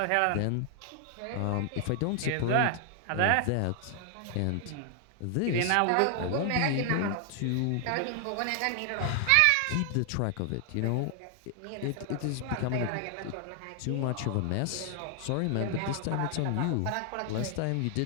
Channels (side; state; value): both; different; correlation 0.00